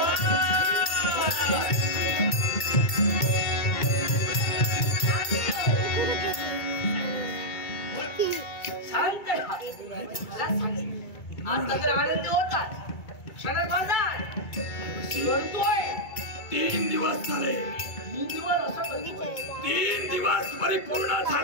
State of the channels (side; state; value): right; late; 2.3 ms